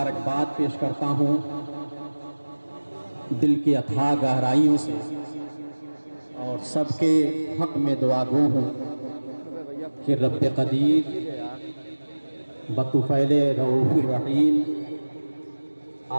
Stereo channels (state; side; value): inverted; both; correlation -1.00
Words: پیش کرتا ہوں دل کی اتھاہ گہرائیوں سے، اور سب کے حق میں دعا گو ہوں کہ رب قدیر بطفیل رؤوف الرحیم